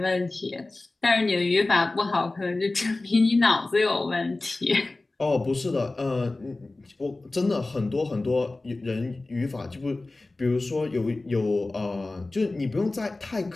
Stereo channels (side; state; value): right; quieter; 3.1 dB